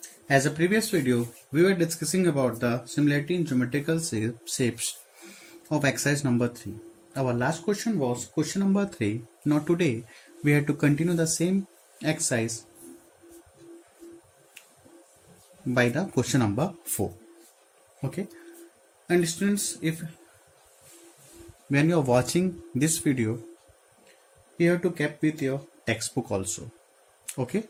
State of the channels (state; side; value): identical; both; correlation 1.00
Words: As a previous video, we were discussing about the similarity in geometrical shapes of exercise number 3. Our last question was question number 3. Now today, we had to continue the same exercise by the question number 4. Okay. And students, if when you are watching this video, you have to keep with your textbook also. Okay.